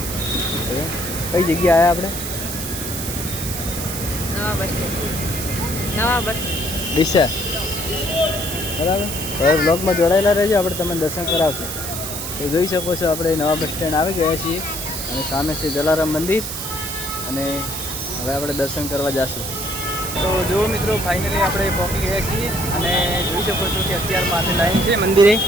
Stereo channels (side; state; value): right; noise; hiss, 6 dB below the sound